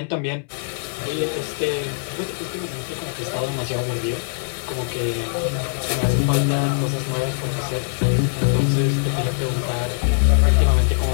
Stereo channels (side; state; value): right; silent; 63 dB below the other